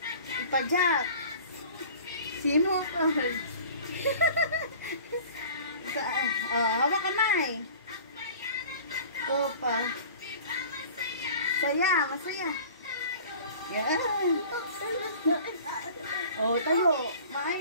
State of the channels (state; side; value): inverted; both; correlation -0.44